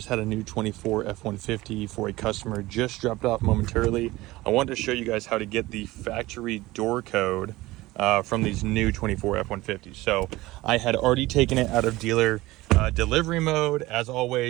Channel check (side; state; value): left; quieter; 19.0 dB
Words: had a new 24 F-150 for a customer, just dropped off momentarily. I wanted to show you guys how to get the factory door code from these new 24 F-150s. So I had already taken it out of dealer delivery mode. As